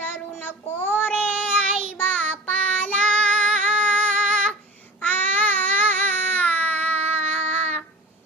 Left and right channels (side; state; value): both; normal; correlation 0.38